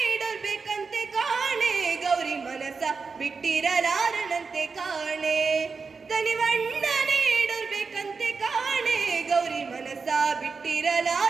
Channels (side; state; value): left; quieter; 4.9 dB